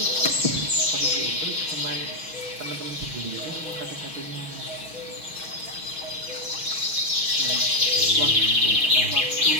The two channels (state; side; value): late; left; 6.2 ms